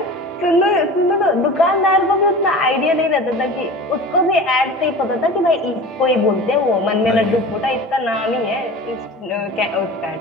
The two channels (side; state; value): both; normal; correlation 0.36